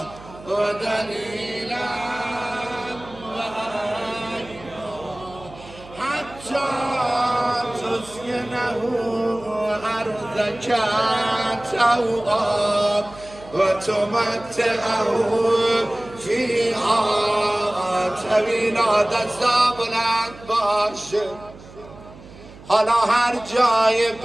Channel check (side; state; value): right; noise; hum, 19 dB below the sound